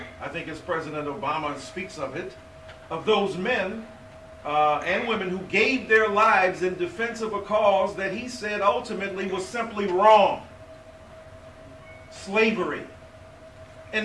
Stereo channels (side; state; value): both; identical; correlation 1.00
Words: I think as President Obama speaks of it, of those men and women who gave their lives in defense of a cause that he said ultimately was simply wrong. Slavery. And